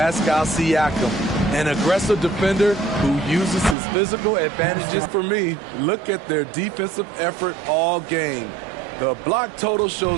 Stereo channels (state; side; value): drops out; left; at 3.8 s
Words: Siakam, an aggressive defender who uses his physical advantages. For me, look at their defensive effort all game. The block total